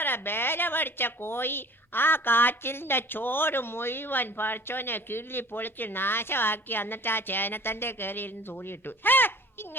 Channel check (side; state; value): both; normal; correlation 0.47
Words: വേല പഠിച്ച കോയി ആ കാറ്റിലിന്റെ ചോട് മുഴുവൻ പഠിച്ചോനെ കിള്ളി പൊളിച്ച് നാശമാക്കി. എന്നിട്ട് ആ ചേനത്തന്റെ കയറി ഇരുന്ന് തൂറിയിട്ടു.